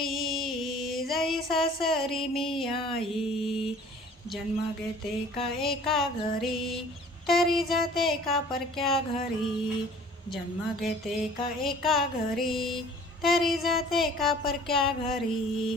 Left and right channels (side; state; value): both; normal; correlation 0.50